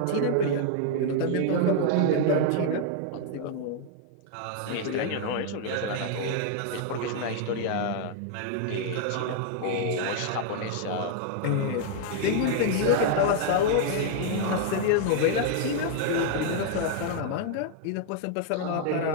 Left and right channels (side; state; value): both; different; correlation 0.00